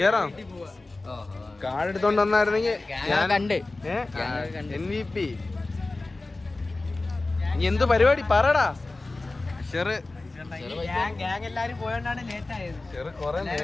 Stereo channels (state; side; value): quieter; right; 3.2 dB